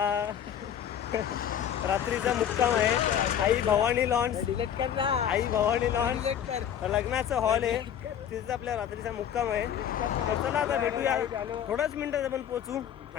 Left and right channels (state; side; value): quieter; right; 9.4 dB